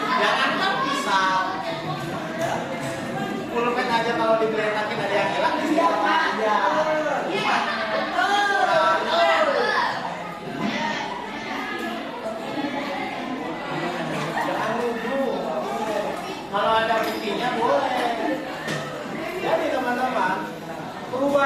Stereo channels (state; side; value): identical; both; correlation 1.00